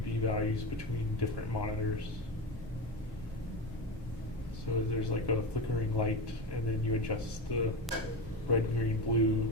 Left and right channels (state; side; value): normal; both; correlation 0.21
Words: values between different monitors. So there's like a flickering light, and then you adjust the red, green, blue